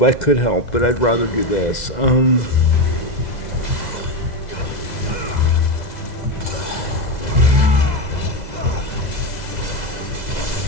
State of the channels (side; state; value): right; late; 2.0 ms